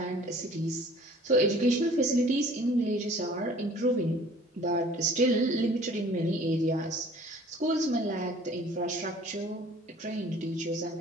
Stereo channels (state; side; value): normal; both; correlation 0.51